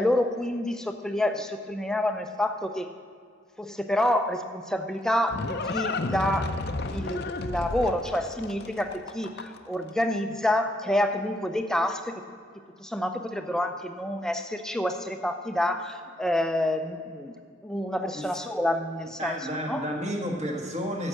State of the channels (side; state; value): both; normal; correlation 0.75